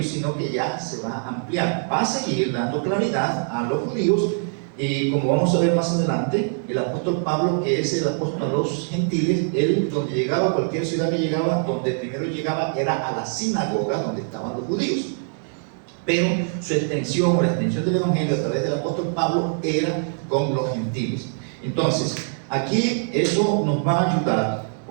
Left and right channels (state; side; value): silent; left; digital silence